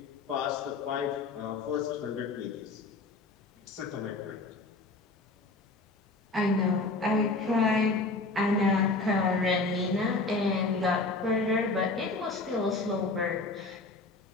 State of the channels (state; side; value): quieter; right; 3.5 dB